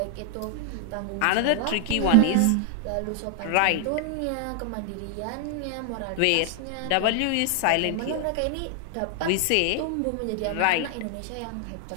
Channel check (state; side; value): different; both; correlation 0.00